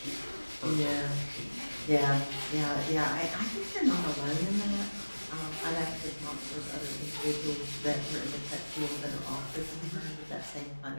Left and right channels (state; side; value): inverted; both; correlation -1.00